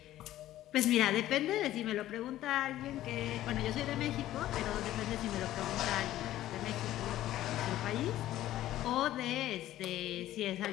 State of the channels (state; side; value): quieter; right; 13.9 dB